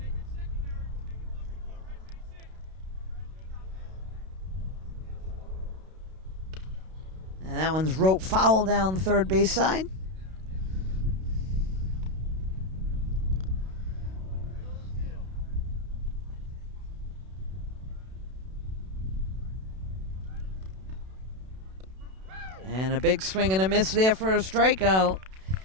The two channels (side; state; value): left; late; 32 ms